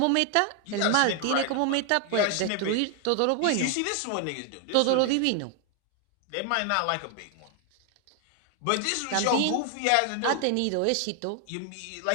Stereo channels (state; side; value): different; both; correlation 0.00